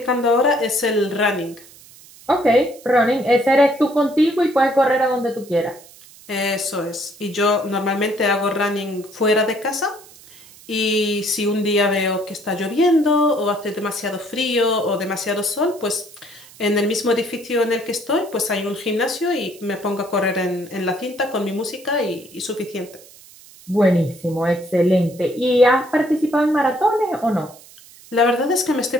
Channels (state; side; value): noise; right; hiss, 22 dB below the sound